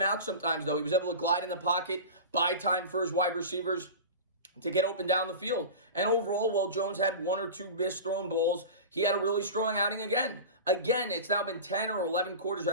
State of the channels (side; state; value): both; inverted; correlation -0.30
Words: out sometimes, though. He was able to glide in the pocket, buy time for his wide receivers to get open down the field. And overall, while Jones had 1 or 2 missed thrown balls, he had a really strong outing again. Again, it's now been 10 or 11 quarters,